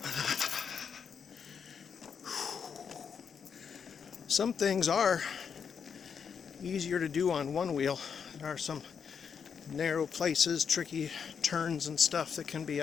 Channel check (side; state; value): right; quieter; 6.8 dB